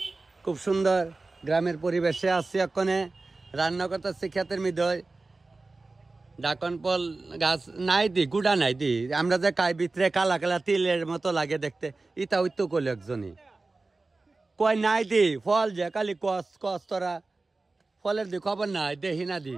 খুব সুন্দর গ্রামের পরিবেশে আসছে এক্ষণে রান্না করতেছে ক্ষেতের মধ্যে ডাকন ফল গাছ নাই দি গুড়া নাই দি আমরা যে খাই ভিতরে কালা কালা তিলের মতো লাগে দেখতে ইটা ওই তো করলো একজনই কয় নাই দি ফল যে কালি কস তোরা ফলের দি খবর নাই দেখি না দি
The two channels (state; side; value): quieter; left; 3.5 dB